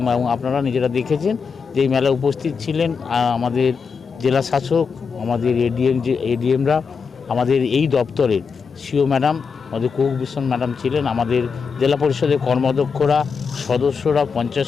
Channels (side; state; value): right; quieter; 5.6 dB